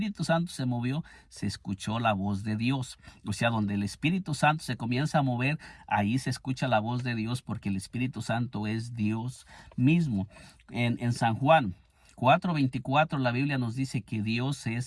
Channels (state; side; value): identical; both; correlation 1.00